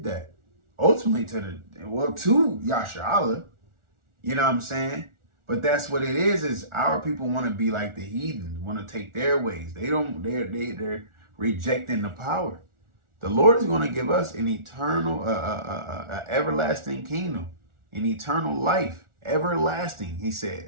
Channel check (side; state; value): left; late; 1.4 ms